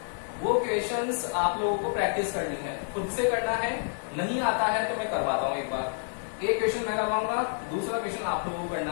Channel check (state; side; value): silent; right; digital silence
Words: वो क्वेश्चंस आप लोगों को प्रैक्टिस करनी है, खुद से करना है, नहीं आता है तो मैं करवाता हूं एक बार। एक क्वेश्चन मैं करवाऊंगा, दूसरा क्वेश्चन आप लोगों को करना